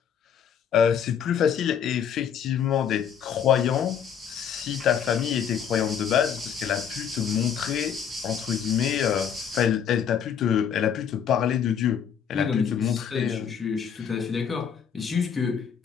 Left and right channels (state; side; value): quieter; right; 8.0 dB